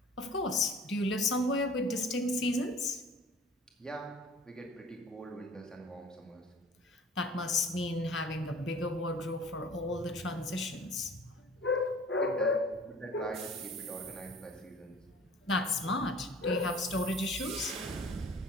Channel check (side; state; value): both; normal; correlation 0.47